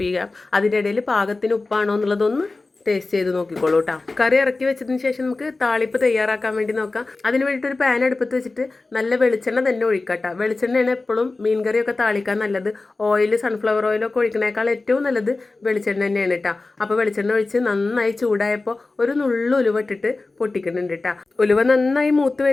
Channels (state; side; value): quieter; right; 3.4 dB